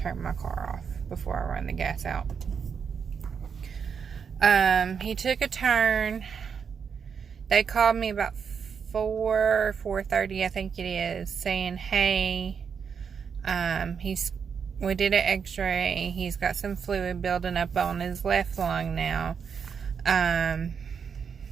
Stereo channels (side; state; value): left; quieter; 6.6 dB